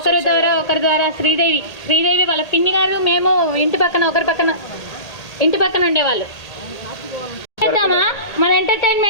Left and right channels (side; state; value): right; late; 1.8 ms